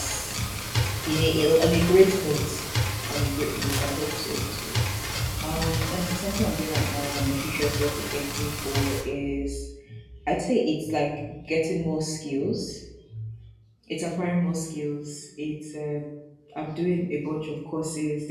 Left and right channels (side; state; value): both; identical; correlation 1.00